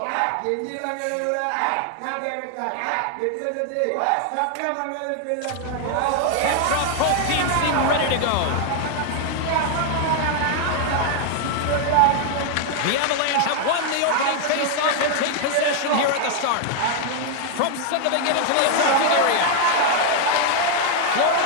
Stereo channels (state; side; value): different; both; correlation 0.00